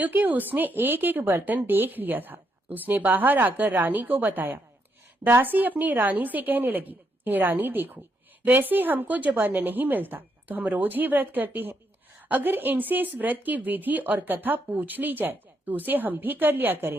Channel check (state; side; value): normal; both; correlation 0.77